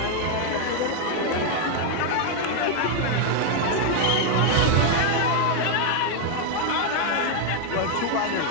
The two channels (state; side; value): different; both; correlation 0.01